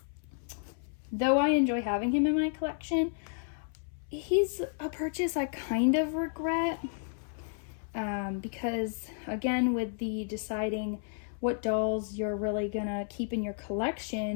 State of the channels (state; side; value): silent; right; 57 dB below the other